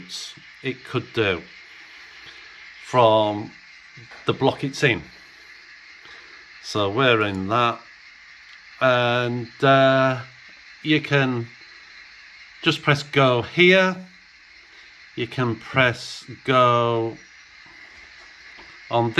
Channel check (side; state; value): both; identical; correlation 1.00